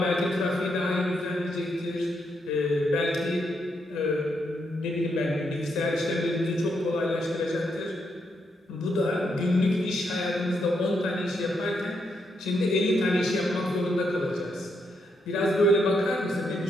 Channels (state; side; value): normal; both; correlation 0.79